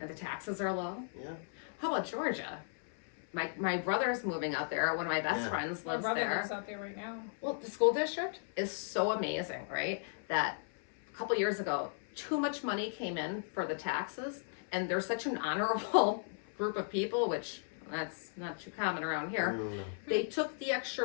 the taxes are low. Yeah. How about Georgia? My brother's moving out there. One of my best Yeah. friends My lives brother there. lives out there right now. Well, the school district is so amazing, right? That a couple years ago, too much money came in for the taxes, and they're such an honorable group of people, which that's not too common around here. They took the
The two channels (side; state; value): right; silent; 54 dB below the other